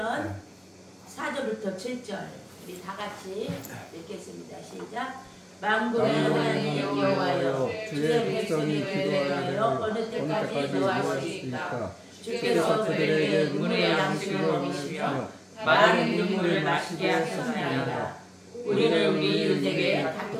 4절부터 7절 우리 다 같이 읽겠습니다. 시작. 만군의 하나님 여호와여, 주의 백성이 기도하여 어느 때까지 노하시리까? 주께서 그들에게 눈물의 양식을 먹이시며 많은 눈물을 마시게 하셨나이다. 우리는 우리 이웃에게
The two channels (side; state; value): both; identical; correlation 1.00